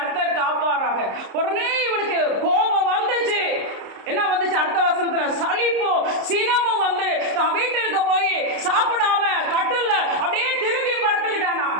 காப்பாராக. உடனே இவனுக்கு கோபம் வந்துச்சு. என்ன வந்துச்சு? அடுத்த வசனத்துல சலிப்போ சினமும் வந்து தான் வீட்டிற்கு போய் சாப்பிடாம கட்டுல அப்படியே திரும்பி படுத்துக்கிட்டானா.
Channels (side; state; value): left; late; 30 ms